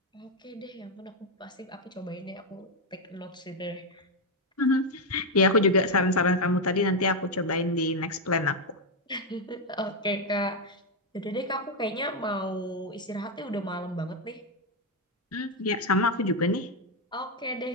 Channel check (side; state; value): both; normal; correlation 0.03